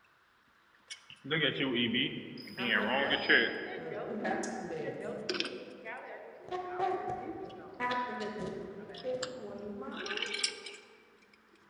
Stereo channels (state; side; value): identical; both; correlation 1.00